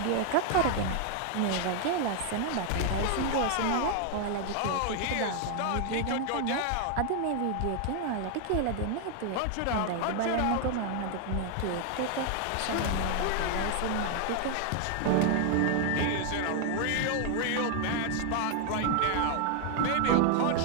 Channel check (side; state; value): both; different; correlation 0.00